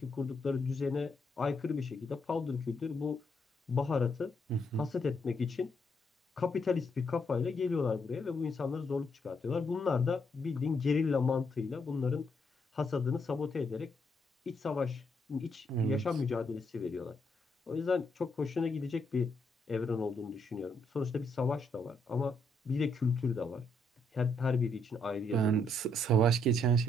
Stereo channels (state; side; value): normal; both; correlation 0.75